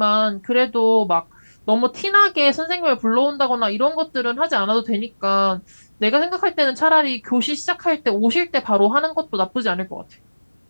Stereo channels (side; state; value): both; inverted; correlation -1.00